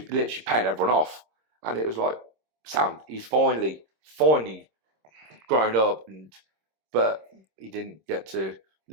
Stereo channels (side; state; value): left; late; 26 ms